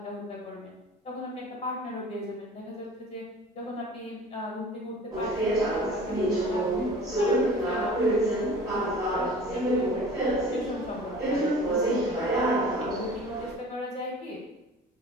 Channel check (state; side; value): normal; both; correlation 0.43